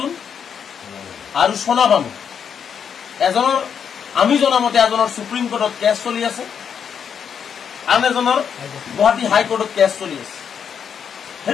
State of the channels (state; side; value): quieter; right; 7.5 dB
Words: আৰু সোনা বানু এজনৰ আমি জনামতে এজনৰ সুপ্ৰিম কোৰ্টত কেছ চলি আছে আন এজনৰ গুৱাহাটী হাইকোৰ্টত কেছ চলি আছে